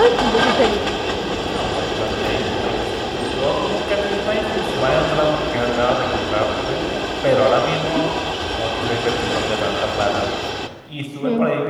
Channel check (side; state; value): both; identical; correlation 1.00